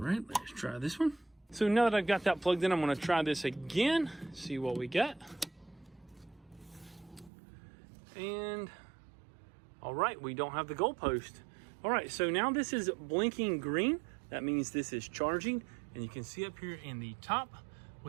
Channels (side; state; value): left; drops out; at 7.3 s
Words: let's try this one. So now that I've got that plugged in, I'm going to try this again, see what we get. And all right, we don't have the goalpost. All right, so now this is blinking green. That means this is charging. And you can see up here in the top,